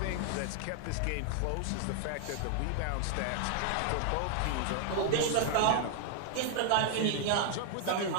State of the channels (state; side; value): different; both; correlation 0.00